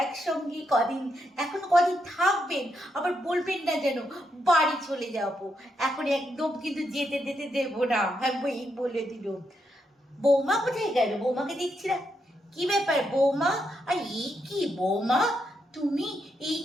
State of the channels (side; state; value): both; normal; correlation 0.80